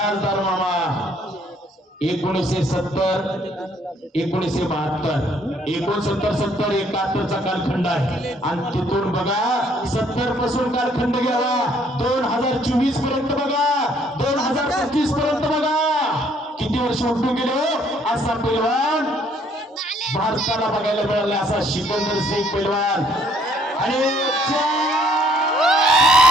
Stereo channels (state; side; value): normal; both; correlation 0.64